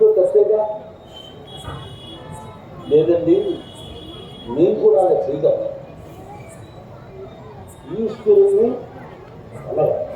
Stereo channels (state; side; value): identical; both; correlation 1.00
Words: తప్పేగా లేదండి. నేను కూడా అలా చేయగలను. ఈశ్వరుని అలాగా